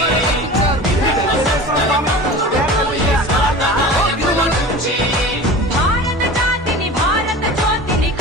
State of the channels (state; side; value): normal; both; correlation 0.35